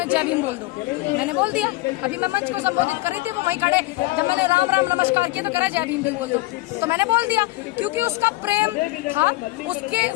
जय भीम बोल दो, मैंने बोल दिया। अभी मैं मंच को संबोधित कर रही थी, वो वहीं खड़े, जब मैंने राम राम नमस्कार किया तो कह रहा जय भीम भी बोल दो, तो मैंने बोल दिया क्योंकि उसका प्रेम था, उसके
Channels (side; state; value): right; quieter; 20.6 dB